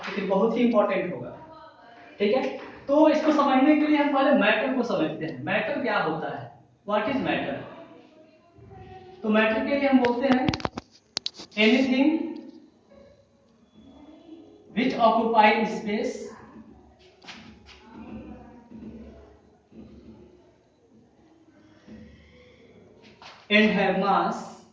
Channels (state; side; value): identical; both; correlation 1.00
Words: बहुत ही इंपॉर्टेंट होगा। ठीक है, तो इसको समझने के लिए हम पहले मैटर को समझते हैं। मैटर क्या होता है? What is matter? तो मैटर के लिए हम बोलते हैं anything which occupy space and have mass